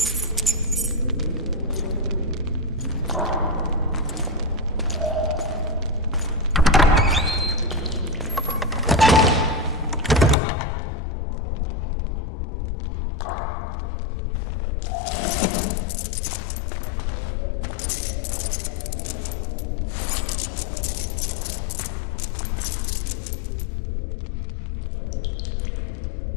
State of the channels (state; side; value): drops out; right; at 10.4 s